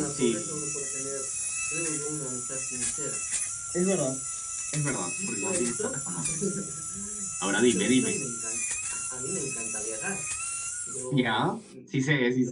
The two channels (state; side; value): identical; both; correlation 1.00